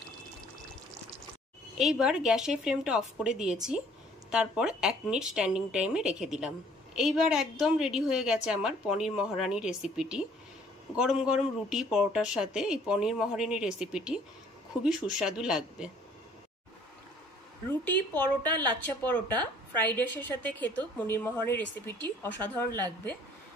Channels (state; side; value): normal; both; correlation 0.58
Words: এইবার গ্যাসের ফ্লেমটা অফ করে দিয়েছি, তারপর 1 মিনিট স্ট্যান্ডিং টাইমে রেখে দিলাম। এইবার একদম রেডি হয়ে গেছে আমার পনির মহারানি রেসিপিটি। গরম গরম রুটি পরোটার সাথে এই পনির মহারানি রেসিপিটি খুবই সুস্বাদু লাগবে। রুটি, পরোটা, লাচ্ছা পরোটা, ফ্রাইড রাইসের সাথে খেতেও পনির মহারানি রেসিপিটি অসাধারণ লাগবে।